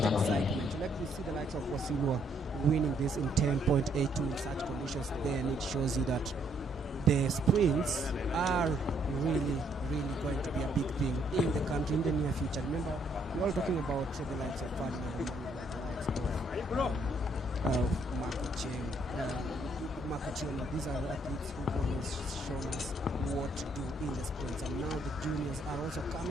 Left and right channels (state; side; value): normal; both; correlation 0.69